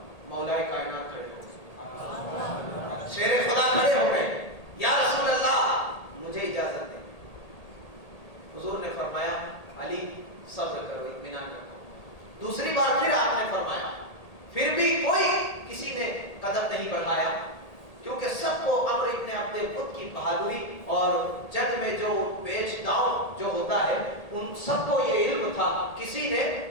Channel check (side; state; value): right; late; 1.8 ms